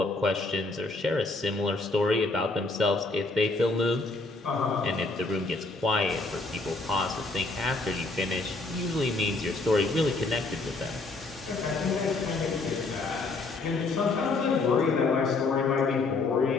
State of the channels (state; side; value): quieter; right; 3.4 dB